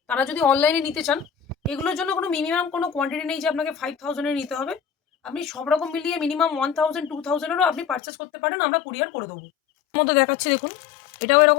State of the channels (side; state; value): right; drops out; at 8.0 s